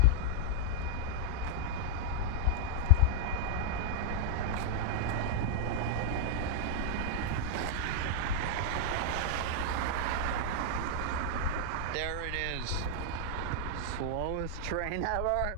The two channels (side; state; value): both; different; correlation -0.01